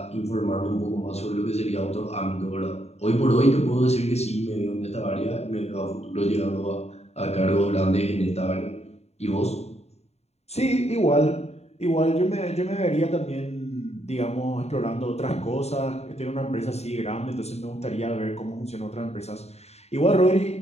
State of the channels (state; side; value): late; right; 0.31 ms